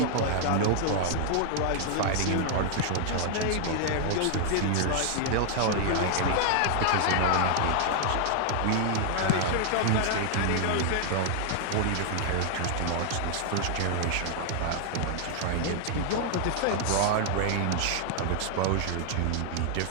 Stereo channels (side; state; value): both; different; correlation 0.00